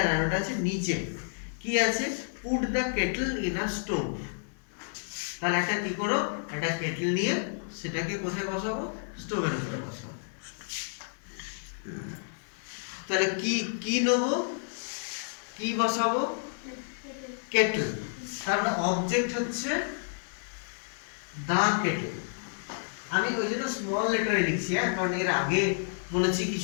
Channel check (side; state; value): right; silent; digital silence